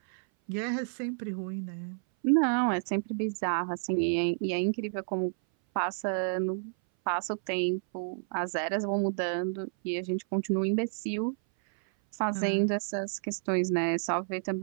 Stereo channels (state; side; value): silent; left; 58 dB below the other